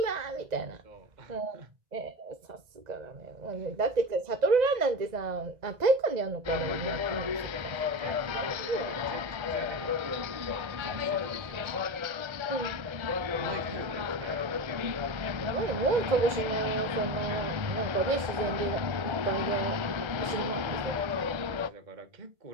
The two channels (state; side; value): late; left; 1.3 ms